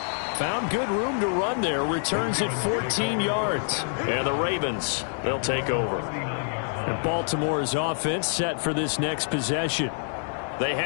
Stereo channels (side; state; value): right; silent; 61 dB below the other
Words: Found good room to run there. Returns at 14 yards. And the Ravens, they'll take over. And Baltimore's offense set for this next possession. They